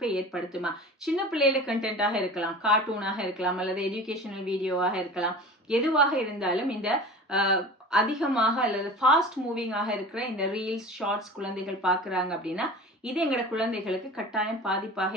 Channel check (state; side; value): normal; both; correlation 0.37